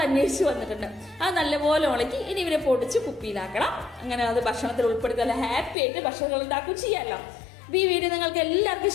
അന്വേഷിച്ച് വന്നിട്ടുണ്ട്. അത് നല്ലപോലെ ഉണക്കി ഇനി ഇവരെ പൊടിച്ച് കുപ്പിയിലാക്കണം. അങ്ങനെ അത് ഭക്ഷണത്തിൽ ഉൾപ്പെടുത്തി നല്ല ഹാപ്പി ആയിട്ട് ഭക്ഷണങ്ങൾ ഉണ്ടാക്കുകയും ചെയ്യാമല്ലോ. ഈ വീഡിയോ നിങ്ങൾക്ക് എല്ലാവർക്കും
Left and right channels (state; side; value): drops out; right; at 5.8 s